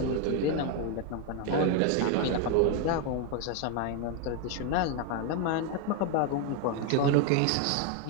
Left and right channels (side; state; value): both; different; correlation 0.01